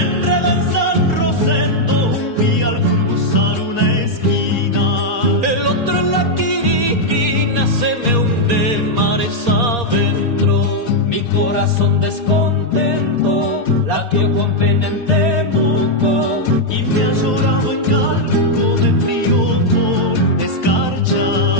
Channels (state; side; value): late; left; 4.2 ms